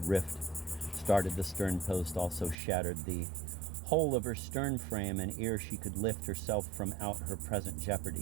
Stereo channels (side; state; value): left; drops out; at 2.6 s